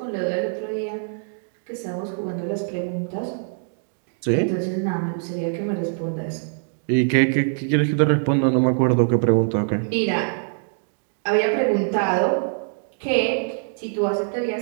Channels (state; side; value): silent; left; digital silence